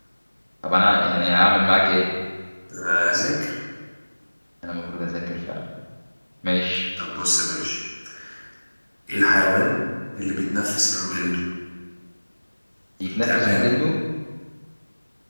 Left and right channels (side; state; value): both; inverted; correlation -1.00